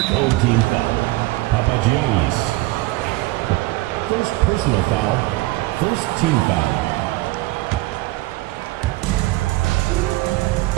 Old team foul. Papagiannis. First personal foul. First team foul.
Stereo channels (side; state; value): left; quieter; 19.6 dB